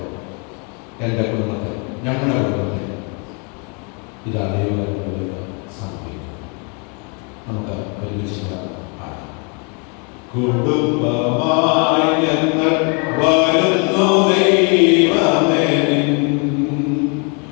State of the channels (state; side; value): quieter; right; 35.6 dB